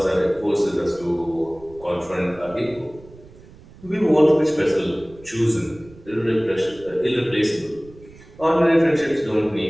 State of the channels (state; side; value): noise; right; rumble, 22 dB below the sound